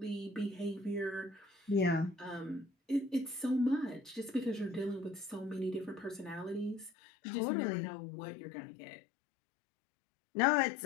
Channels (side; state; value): right; drops out; at 6.9 s